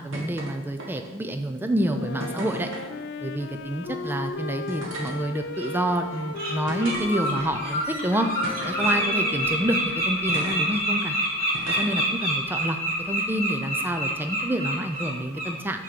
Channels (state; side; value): normal; both; correlation 0.44